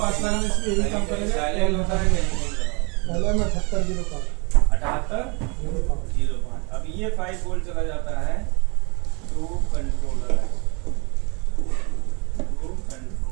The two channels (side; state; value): left; quieter; 30.7 dB